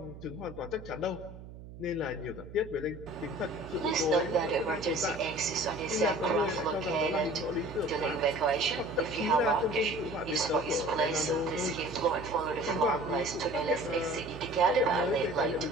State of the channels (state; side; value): noise; right; hum, 15 dB below the sound